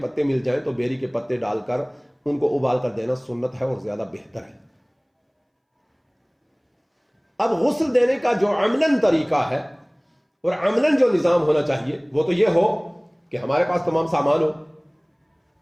مل جائیں تو بیری کے پتے ڈال کر ان کو ابال کر دینا سنت ہے اور زیادہ بہتر ہے. اب غسل دینے کا جو عملاً طریقہ ہے اور عملاً جو نظام ہونا چاہیے وہ تو یہ ہو کہ ہمارے پاس تمام سامان ہو،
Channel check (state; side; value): identical; both; correlation 1.00